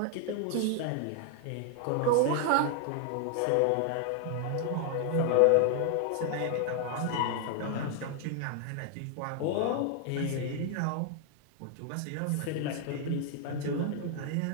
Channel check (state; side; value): different; both; correlation 0.00